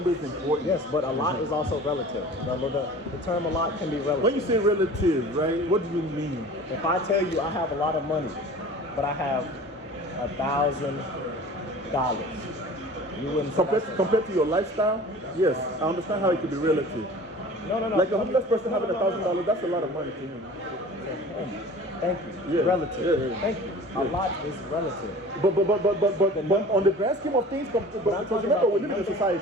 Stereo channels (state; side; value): normal; both; correlation 0.42